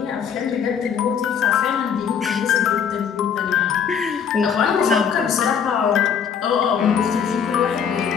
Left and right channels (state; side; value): quieter; right; 7.5 dB